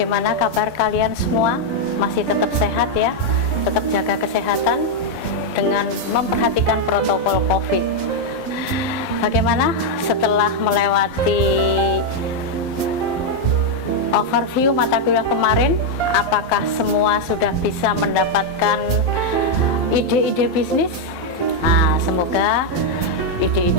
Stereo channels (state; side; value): late; right; 12 ms